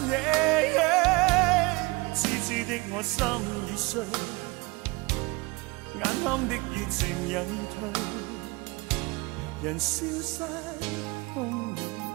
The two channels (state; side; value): quieter; left; 24.9 dB